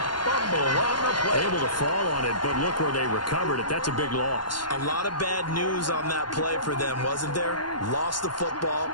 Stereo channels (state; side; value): late; right; 0.71 ms